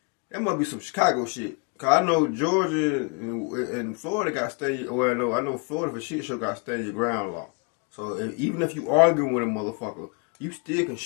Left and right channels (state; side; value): quieter; right; 34.7 dB